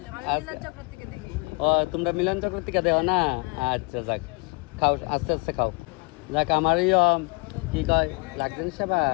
ও তোমরা মিলন চক্র থেকে দেও না? আচ্ছা যাক, খাও আস্তে আস্তে খাও। যাক, আমার কি কয় লাগছে না সেবা?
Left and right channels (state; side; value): quieter; right; 30.3 dB